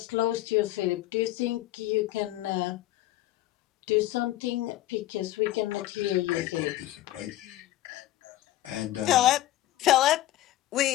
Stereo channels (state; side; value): quieter; right; 15.2 dB